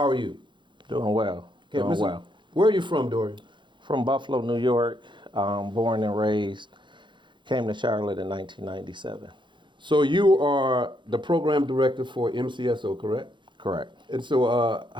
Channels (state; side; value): late; left; 0.23 ms